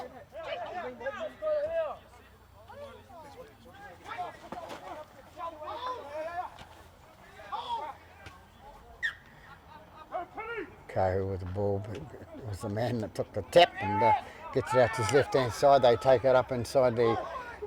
Kahu with the ball, but it was the man that took the tap and gets it out to his left hand side. They take it up inside the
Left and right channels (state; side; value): identical; both; correlation 1.00